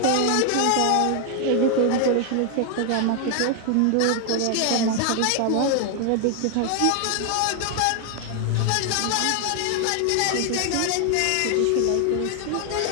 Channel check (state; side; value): different; both; correlation 0.00